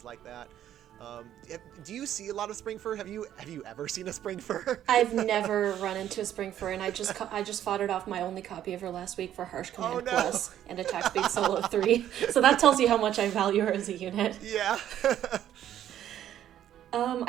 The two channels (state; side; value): quieter; left; 11.2 dB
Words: like that. Do you see a lot of Spring Fur? Have you ever seen a Spring Fur? I've never run into a Spring Fur, and I just fought it off my only copy of her last week for Harsh Command Plus and Attack Speed Solo 3. So that tells you how much I value her as a unit. Yeah.